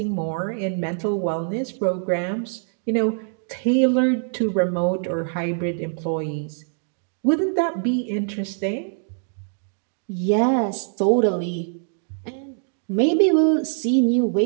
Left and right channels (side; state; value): left; silent; digital silence